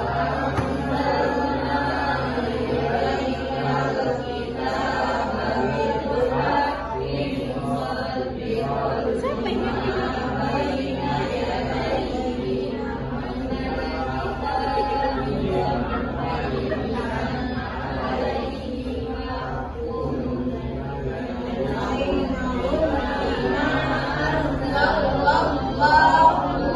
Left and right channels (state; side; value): identical; both; correlation 1.00